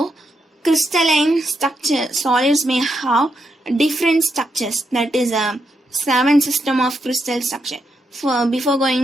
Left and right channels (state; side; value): normal; both; correlation 0.82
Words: crystalline structure solids may have different structures, that is a 7 system of crystal structure. Before